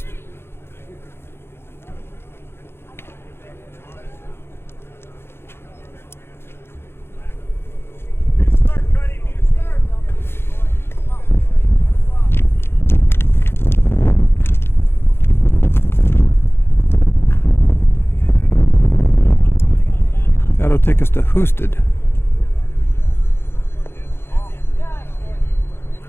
That'll take us to Husted.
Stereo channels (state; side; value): late; right; 0.11 ms